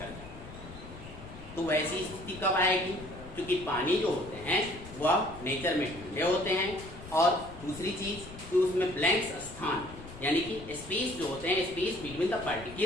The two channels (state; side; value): noise; left; rumble, 15 dB below the sound